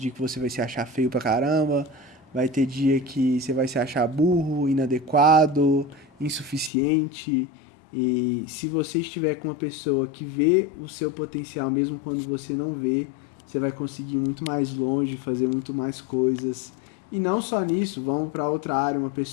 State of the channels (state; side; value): drops out; right; at 6.7 s